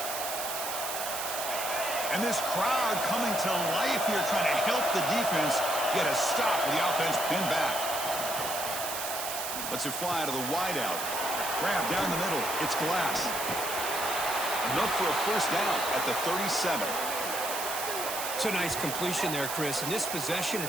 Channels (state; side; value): noise; right; hiss, 4 dB below the sound